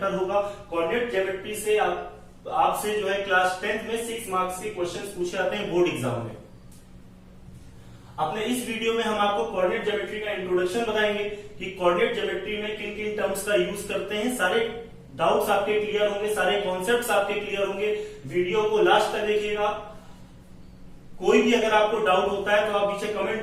होगा। कोऑर्डिनेट ज्योमेट्री से आपसे जो है क्लास 10th में 6 मार्क्स के क्वेश्चंस पूछे जाते हैं बोर्ड एग्जाम में। अपने इस वीडियो में हम आपको कोऑर्डिनेट ज्योमेट्री का इंट्रोडक्शन बताएंगे कि कोऑर्डिनेट ज्योमेट्री में किन किन टर्म्स का यूज करते हैं। सारे डाउट्स आपके क्लियर होंगे, सारे कॉन्सेप्ट्स आपके क्लियर होंगे। वीडियो को लास्ट तक देखिएगा। कोई भी अगर आपको डाउट होता है तो आप नीचे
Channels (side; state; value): both; identical; correlation 1.00